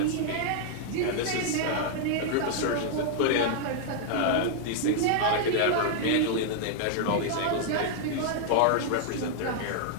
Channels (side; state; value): both; different; correlation 0.00